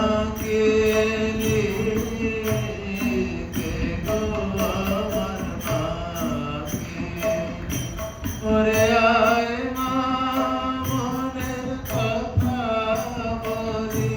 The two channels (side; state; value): both; identical; correlation 1.00